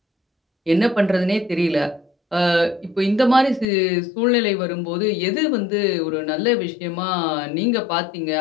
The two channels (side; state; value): right; drops out; at 3.7 s